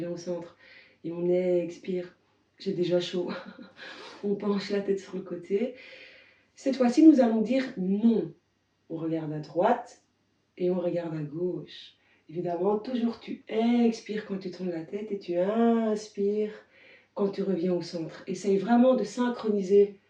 au centre et on expire. J'ai déjà chaud. On penche la tête sur le côté. Cette fois-ci, nous allons dire non. On regarde à droite et on regarde à gauche. Évidemment, toujours tu expires quand tu tournes la tête et tu inspires quand tu reviens au centre. Essaye vraiment de synchroniser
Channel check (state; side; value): identical; both; correlation 1.00